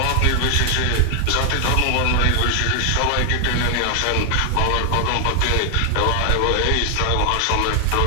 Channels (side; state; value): both; different; correlation 0.00